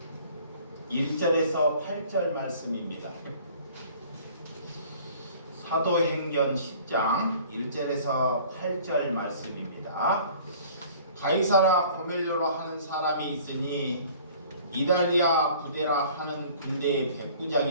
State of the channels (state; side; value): inverted; both; correlation -0.50